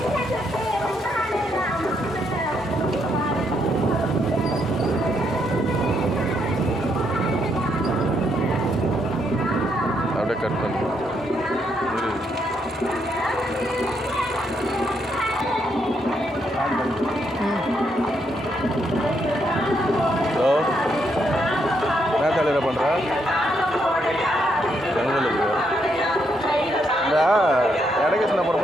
அப்படியே கட் பண்ணு. ஹலோ, என்ன காலையில் பண்ணுற? செங்கலுக்கு இந்த எடகிருஷ்ணா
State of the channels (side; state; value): both; normal; correlation 0.76